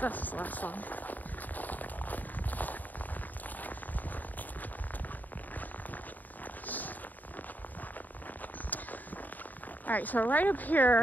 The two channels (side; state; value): right; late; 0.084 ms